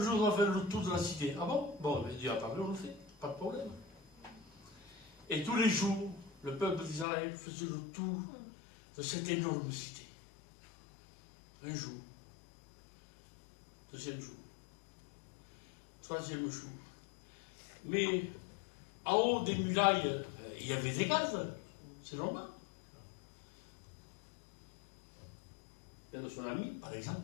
on va faire le tour de la cité. Ah bon? Bon, mais Dieu a parlé, on le fait. Pas de problème. Et tous les jours, le peuple d'Israël faisait le tour de cette énorme cité. Un jour. Deuxième jour. Troisième jour. Mais en haut des murailles, il y avait des gardes. C'est normal. Il y a de son ami, par exemple.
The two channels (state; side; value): drops out; right; at 7.1 s